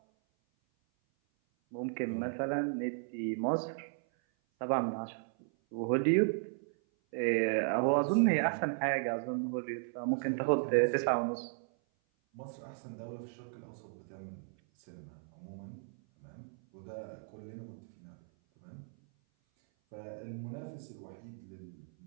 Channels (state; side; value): silent; left; 54 dB below the other